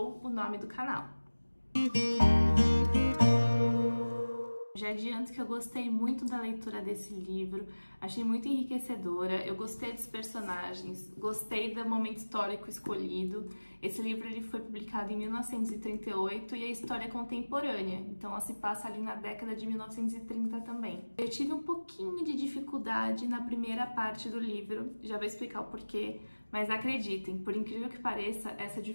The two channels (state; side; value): inverted; both; correlation -1.00